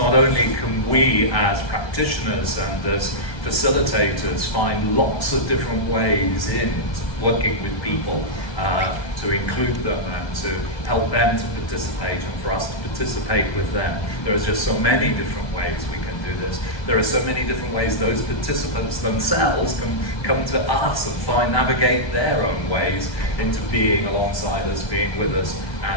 only can we as practitioners and as facilitators find lots of different ways in working with people to include them and to help them to participate and for us to participate with them. There are just so many different ways we can do this. There are so many different ways those participants themselves can come to us and navigate their own ways into being alongside us, being with us,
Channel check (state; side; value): late; right; 1.3 ms